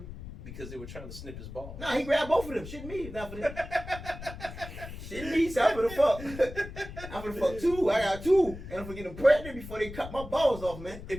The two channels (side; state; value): left; noise; rumble, 12 dB below the sound